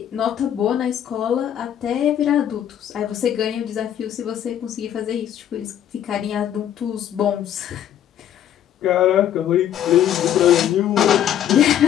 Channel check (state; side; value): quieter; right; 10.5 dB